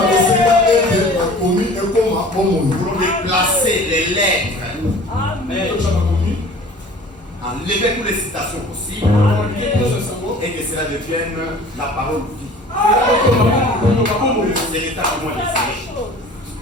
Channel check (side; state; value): both; normal; correlation 0.45